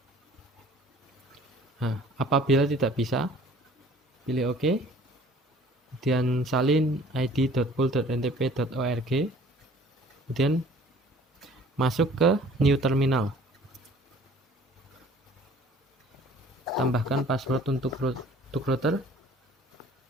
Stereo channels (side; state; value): both; normal; correlation 0.52